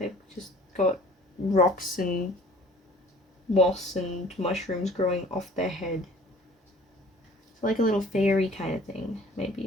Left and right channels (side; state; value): both; normal; correlation 0.50